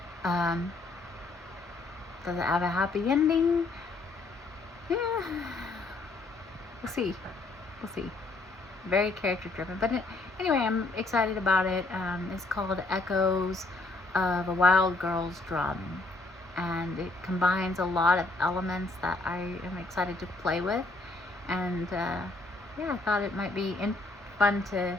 Does it have a happy ending? Yeah. We'll see. Very character driven. But anyway, I'm excited about it. It's called Echoes of a Wild Girl's Drum. And it combines a lot of elements that I am excited to play with. And yeah, I thought it might be fun to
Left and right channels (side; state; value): right; quieter; 3.2 dB